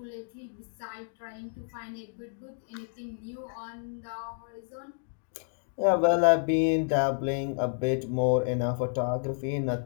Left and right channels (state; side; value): silent; right; digital silence